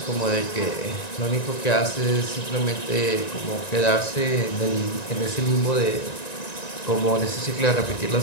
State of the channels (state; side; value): late; right; 1.9 ms